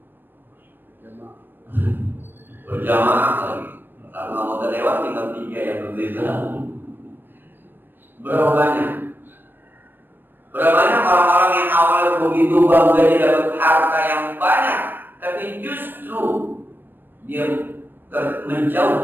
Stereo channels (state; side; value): late; left; 0.095 ms